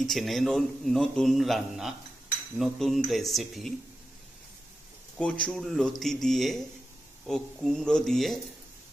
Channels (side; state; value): both; normal; correlation 0.91